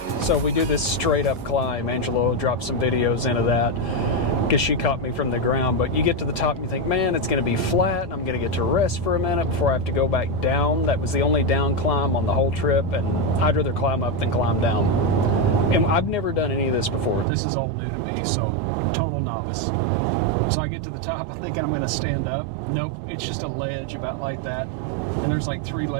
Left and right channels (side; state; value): left; drops out; at 17.2 s